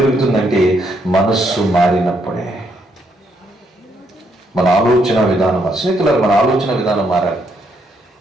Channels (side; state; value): both; normal; correlation 0.75